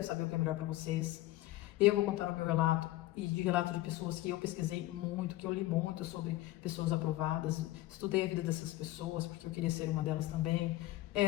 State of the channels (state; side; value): quieter; right; 16.9 dB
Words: saber o que é melhor para vocês. Eu vou contar o meu relato e de relato de pessoas que eu pesquisei muito, que eu li muito sobre pessoas aprovadas. Estudei a vida dessas pessoas porque eu queria ser uma delas também.